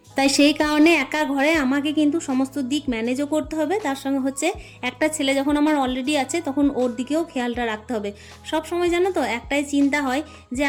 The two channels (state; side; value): identical; both; correlation 1.00